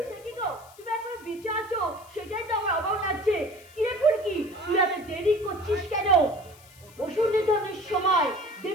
সে কি গো, তুমি এখন বিচারছো? সেটাই তো আমার অবাক লাগছে। কিরে ফুলকি, তুই এত দেরি করছিস কেন? অসুর নিধনের সময়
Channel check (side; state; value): left; noise; hiss, 24 dB below the sound